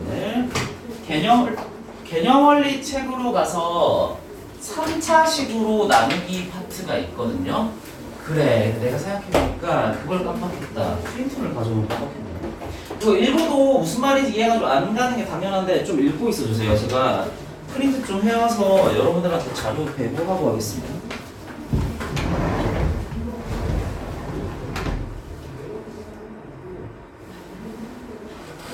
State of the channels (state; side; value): identical; both; correlation 1.00